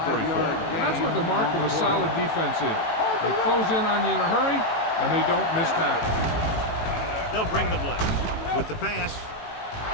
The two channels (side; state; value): right; late; 18 ms